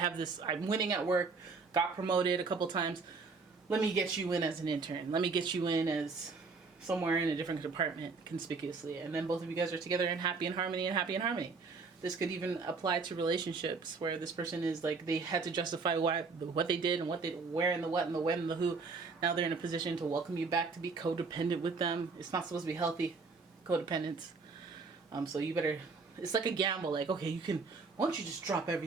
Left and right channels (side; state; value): left; quieter; 4.4 dB